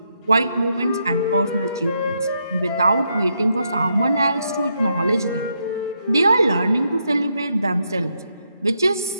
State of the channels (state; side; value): inverted; both; correlation -0.79